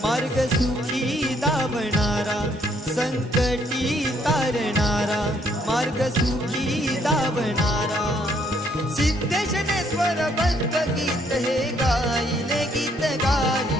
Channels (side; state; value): both; normal; correlation 0.68